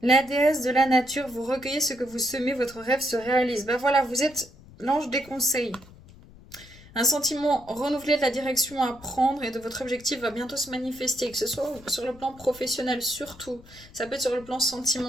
déesse de la nature, vous recueillez ce que vous semez, votre rêve se réalise. Ben voilà, vous êtes l'ange des conseils. Un sentiment renouvelé de la direction à prendre et de votre objectif va bientôt se manifester, que ce soit sur le plan professionnel surtout, ça peut être sur le plan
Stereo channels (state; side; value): noise; left; rumble, 21 dB below the sound